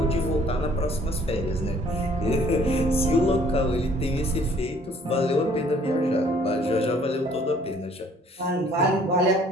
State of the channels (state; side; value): normal; both; correlation 0.58